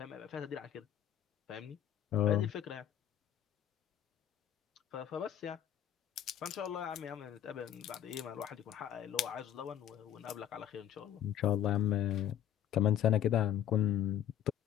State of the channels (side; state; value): right; quieter; 10.5 dB